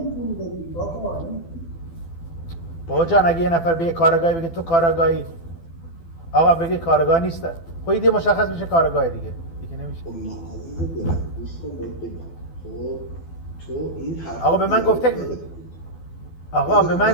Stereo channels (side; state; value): right; late; 12 ms